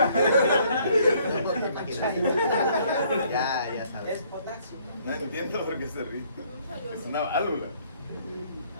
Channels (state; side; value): inverted; both; correlation -0.63